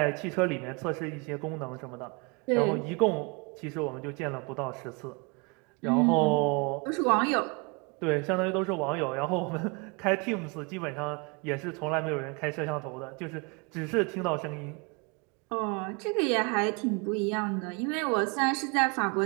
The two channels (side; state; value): left; quieter; 31.3 dB